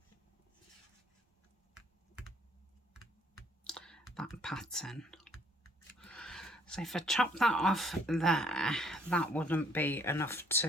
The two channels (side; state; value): both; normal; correlation 0.63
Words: That pattern. So if I chop that off there, that wouldn't be enough